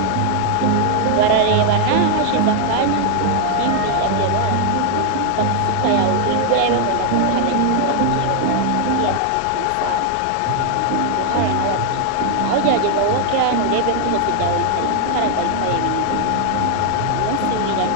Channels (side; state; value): both; different; correlation 0.00